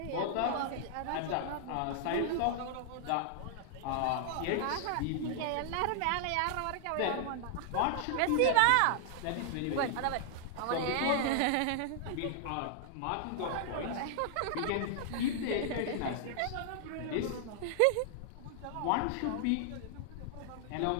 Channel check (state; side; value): different; both; correlation -0.01